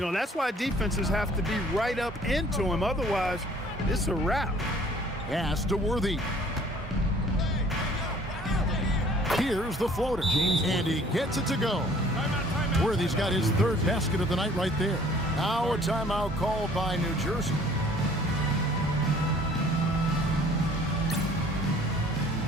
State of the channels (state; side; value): normal; both; correlation 0.55